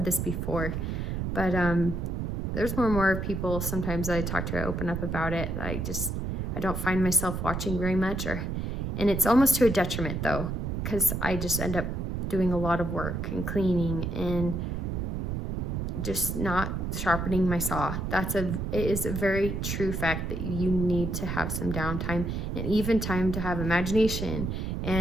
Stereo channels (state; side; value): noise; right; rumble, 2 dB below the sound